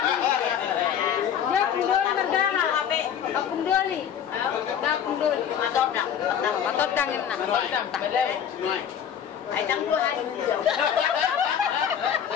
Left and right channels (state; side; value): quieter; right; 8.7 dB